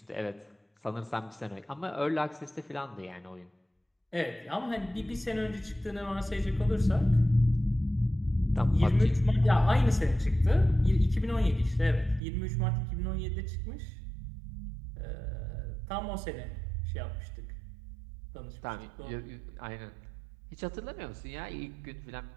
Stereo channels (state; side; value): drops out; left; at 12.2 s